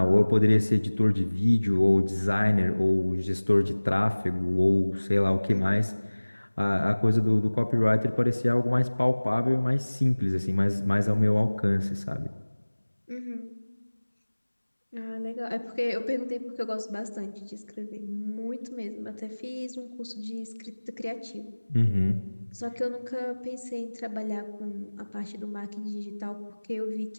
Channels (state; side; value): inverted; both; correlation -1.00